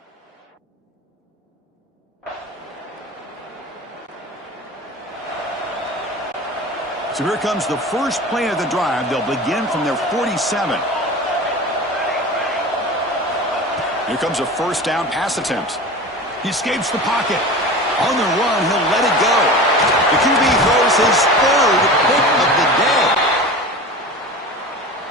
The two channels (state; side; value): normal; both; correlation 0.33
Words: So here comes the first play of the drive. They'll begin from their 47. Here comes a first down pass attempt. He escapes the pocket. On the run, he'll let it go. The QB throws his third pick of the day.